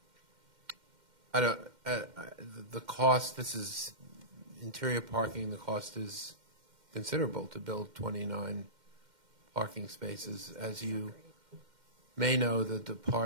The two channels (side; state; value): left; late; 2.1 ms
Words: the cost. This is interior parking. The cost is considerable to build 29 parking spaces. As you may know, the